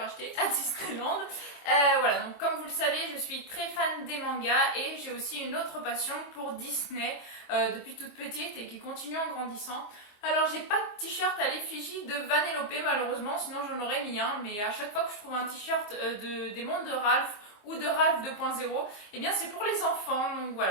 acheté à Disneyland. Voilà, donc comme vous le savez, je suis très fan des mangas et j'ai aussi une autre passion pour Disney depuis toute petite et qui continue en grandissant. Alors j'ai pas de t-shirt à l'effigie de Vanellope malheureusement, sinon j'en aurais mis un, mais à chaque fois que je trouve un t-shirt des mondes de Ralph ou de Ralph 2.0, eh bien c'est pour les enfants, donc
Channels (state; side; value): late; right; 25 ms